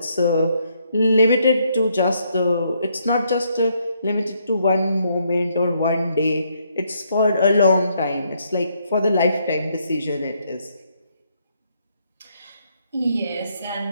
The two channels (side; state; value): both; inverted; correlation -0.73